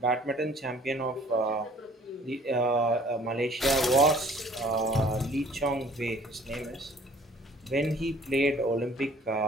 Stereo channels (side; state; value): both; normal; correlation 0.54